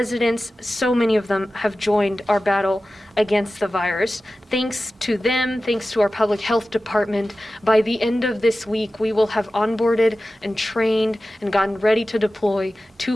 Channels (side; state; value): both; normal; correlation 0.95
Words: so many of them have joined our battle against the virus. Thanks to them, thanks to our public health department, by the end of this week, we will have onboarded and trained and gotten ready to deploy